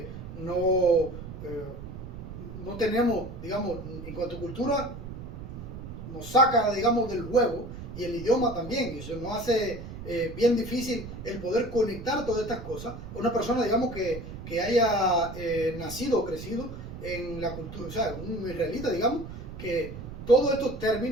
no tenemos, digamos, en cuanto a cultura, nos saca, digamos, del juego, y el idioma también, y eso nos hace bien difícil el poder conectar todas estas cosas. Una persona, digamos, que haya nacido o crecido en la cultura, o sea, un israelita, digamos, que todos estos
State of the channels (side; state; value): right; noise; rumble, 10 dB below the sound